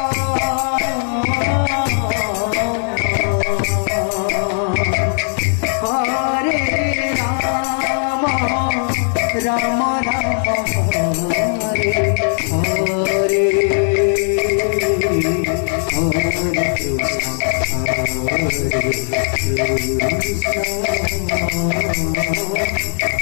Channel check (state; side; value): silent; right; 60 dB below the other